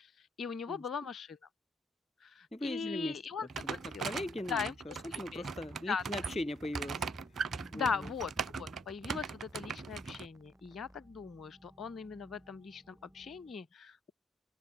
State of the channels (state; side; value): normal; both; correlation 0.70